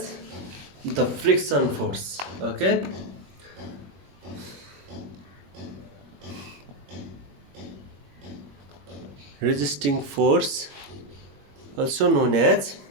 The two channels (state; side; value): late; left; 21 ms